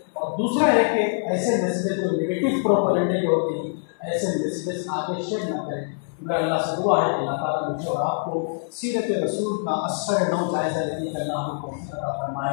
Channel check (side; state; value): right; silent; 62 dB below the other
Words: اور دوسرا ہے کہ ایسے میسیجز جو نگیٹو پروپیگنڈے کے ہوتے ہیں ایسے میسیجز آگے شیئر نہ کریں. میرا اللہ سے دعا ہے کہ اللہ تعالیٰ مجھے اور آپ کو سیرت رسول کا اثر نو جائزہ لینے کا اللہ ہمیں توفیق عطا